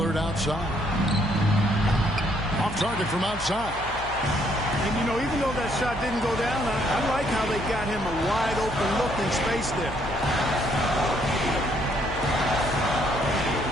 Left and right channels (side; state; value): left; noise; hum, 13 dB below the sound